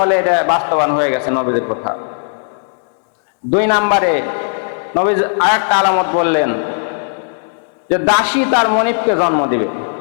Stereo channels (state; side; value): silent; right; digital silence